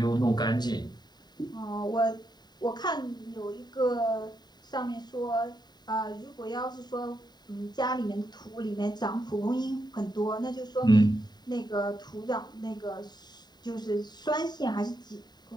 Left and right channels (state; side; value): late; right; 0.20 ms